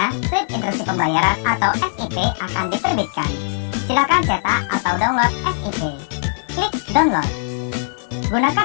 slip instruksi pembayaran atau SIP akan diterbitkan. Silakan cetak atau download SIP. Klik download.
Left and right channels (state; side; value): silent; right; digital silence